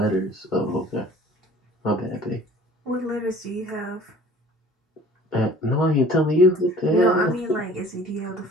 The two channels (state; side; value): normal; both; correlation 0.49